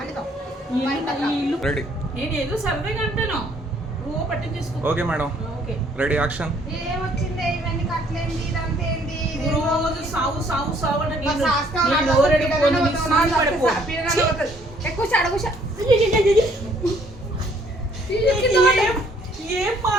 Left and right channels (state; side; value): normal; both; correlation 0.63